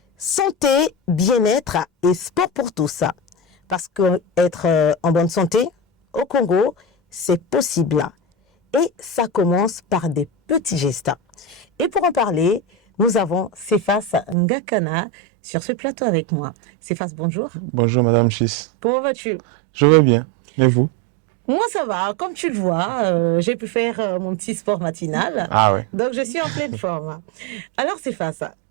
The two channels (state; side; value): drops out; left; at 14.4 s